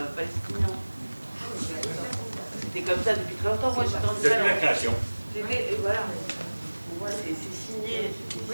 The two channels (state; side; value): inverted; both; correlation -1.00